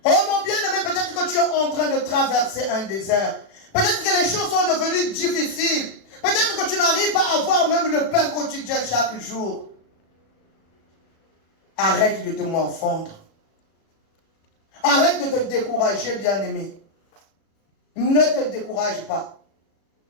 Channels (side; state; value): right; late; 37 ms